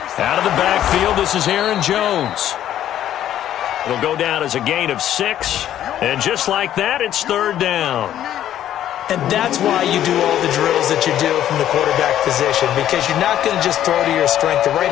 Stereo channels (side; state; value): right; quieter; 11.5 dB